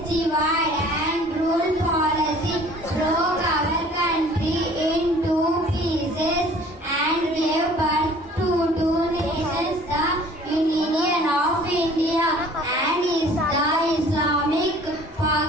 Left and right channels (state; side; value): normal; both; correlation 0.51